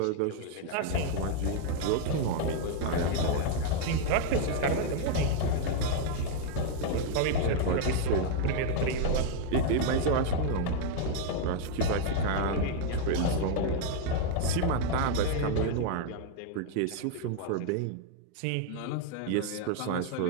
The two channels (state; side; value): different; both; correlation 0.00